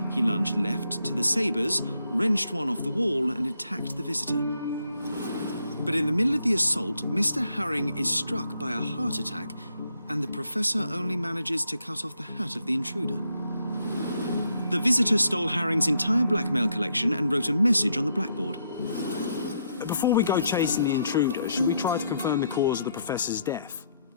He lunged left to the sabres, wrenched one off the wall, and attacked the visitor. But in the middle of the assault, Mr. Herring is struck by a heart attack, and the professor only manages to cut off the hat of the intruder. The visitor stole Herring's entire blackmail collection and wrote a message on the blackboard. Before we go chasing the intruder, should we try to confirm the cause of the professor's death?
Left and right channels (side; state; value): both; inverted; correlation -0.75